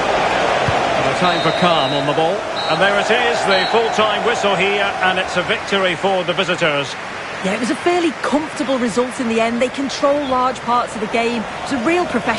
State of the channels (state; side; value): identical; both; correlation 1.00